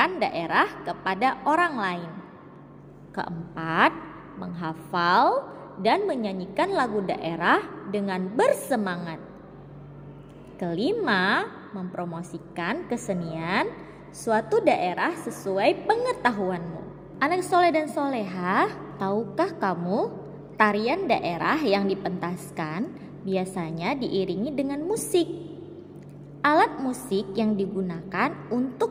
daerah kepada orang lain. Keempat, menghafal dan menyanyikan lagu daerah dengan bersemangat. Kelima, mempromosikan kesenian suatu daerah sesuai pengetahuanmu. Anak soleh dan soleha, tahukah kamu tarian daerah yang dipentaskan biasanya diiringi dengan musik? Alat musik yang digunakan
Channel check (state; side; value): identical; both; correlation 1.00